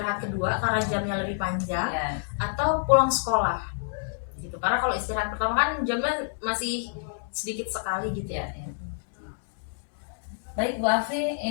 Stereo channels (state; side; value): silent; right; digital silence